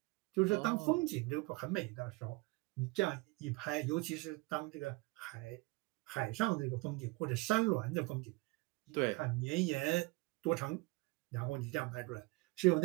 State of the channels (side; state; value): left; quieter; 24.2 dB